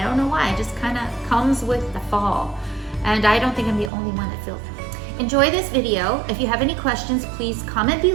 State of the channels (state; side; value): drops out; left; at 3.9 s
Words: don't know why. It just kind of comes with the fall, and I don't think I'm the only one that feels that. Enjoy this video. If you have any questions, please comment